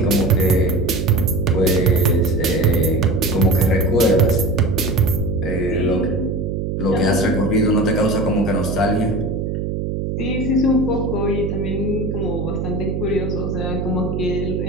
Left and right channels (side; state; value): right; noise; hum, 2 dB below the sound